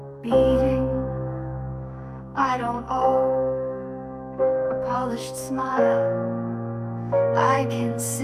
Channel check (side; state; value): both; identical; correlation 1.00